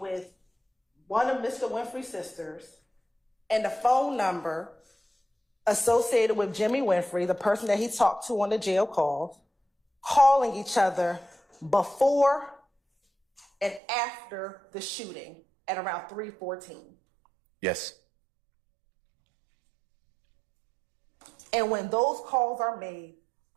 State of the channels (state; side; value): drops out; left; at 13.8 s